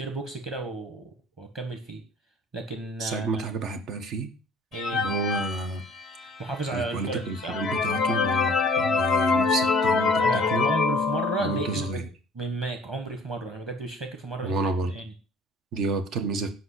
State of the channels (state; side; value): normal; both; correlation 0.51